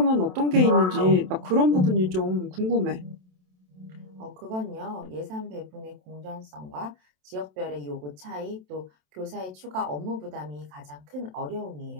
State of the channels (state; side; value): late; left; 27 ms